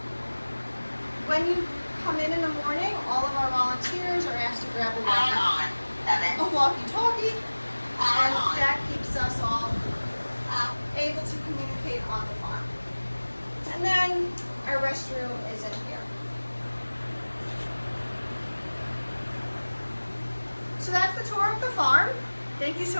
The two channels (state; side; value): inverted; both; correlation -1.00